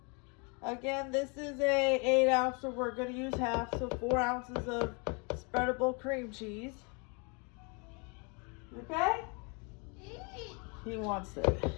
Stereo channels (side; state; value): right; quieter; 33.7 dB